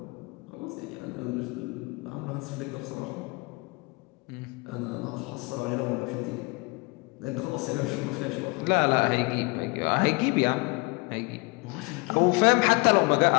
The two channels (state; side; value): quieter; right; 27.6 dB